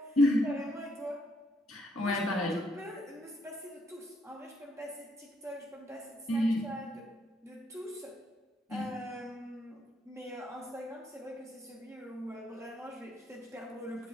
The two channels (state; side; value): normal; both; correlation 0.73